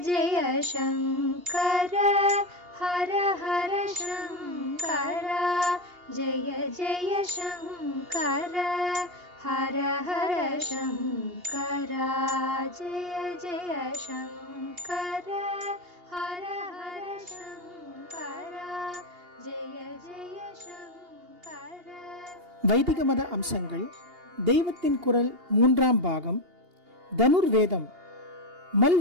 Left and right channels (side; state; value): left; late; 2.8 ms